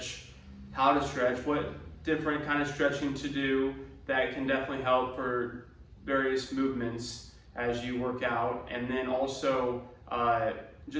how to stretch, what different kind of stretching to do that can definitely help for various movements as you work out, and then also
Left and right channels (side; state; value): both; identical; correlation 1.00